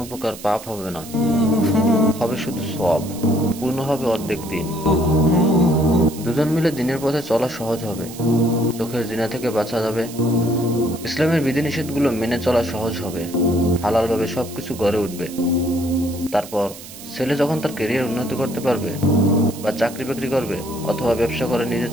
প্রকার পাপ হবে না, হবে শুধু সওয়াব। পূর্ণ হবে অর্ধেক দিন। দুজন মিলে দিনের পথে চলা সহজ হবে। চোখের জিনা থেকে বাঁচা যাবে। ইসলামের বিধিনিষেধগুলো মেনে চলা সহজ হবে। হালালভাবে সবকিছু গড়ে উঠবে। তারপর ছেলে যখন তার ক্যারিয়ার উন্নতি করতে পারবে, বা চাকরি বাকরি করবে, অথবা ব্যবসা করে নিজে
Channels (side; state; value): right; noise; hiss, 15 dB below the sound